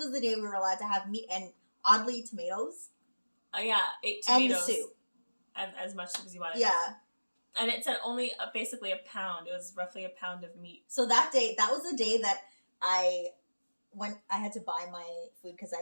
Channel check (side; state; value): both; inverted; correlation -1.00